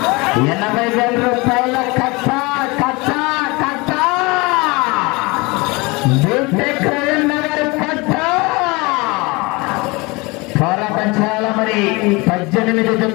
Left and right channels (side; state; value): right; quieter; 25.4 dB